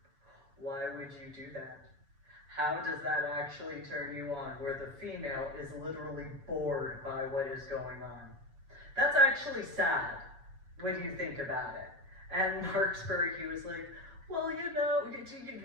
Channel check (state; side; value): late; left; 6.5 ms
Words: Why would you do that? How does that actually turn you on, where the female is literally bored by what is going on? That's actually sad when you think about it. And Marksburg, he was like, well, you know,